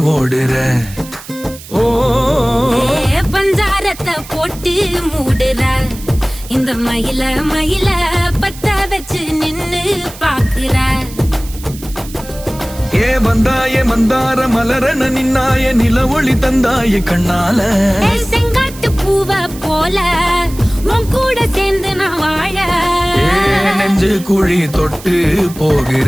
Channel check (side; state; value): right; noise; hiss, 17 dB below the sound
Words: ஓடுற. ஓ பஞ்சாரத்தை போட்டு மூடுற இந்த மயில மயில பத்த வச்சு நின்னு பாக்குற. ஏ வந்தாய மந்தார மலரன நின்னாய நில ஒளி தந்தாய கண்ணால. செங்காட்டு பூவ போல உன் கூட சேர்ந்து நான் வாழ. நெஞ்சு குழி தொட்டு போகிற